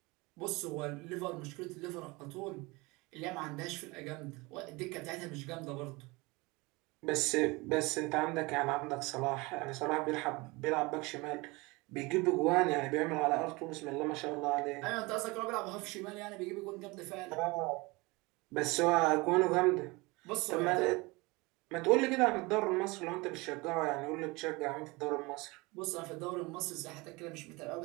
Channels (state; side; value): quieter; left; 24.4 dB